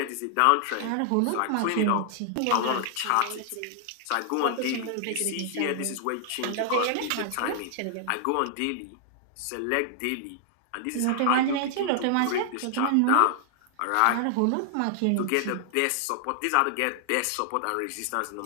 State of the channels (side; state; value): both; different; correlation 0.00